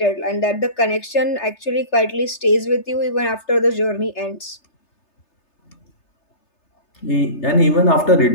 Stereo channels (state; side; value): late; right; 3.3 ms